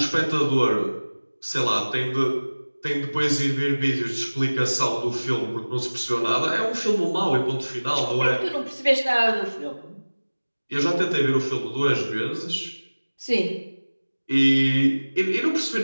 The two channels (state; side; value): inverted; both; correlation -1.00